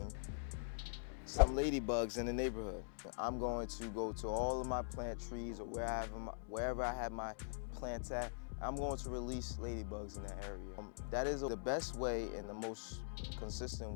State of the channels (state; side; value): silent; right; digital silence